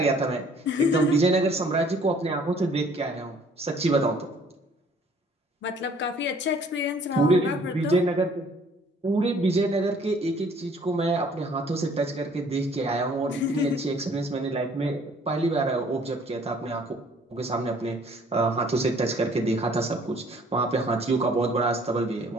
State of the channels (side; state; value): both; normal; correlation 0.57